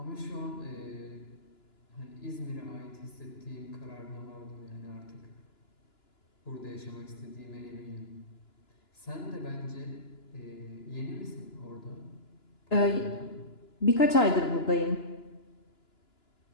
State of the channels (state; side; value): late; right; 2.9 ms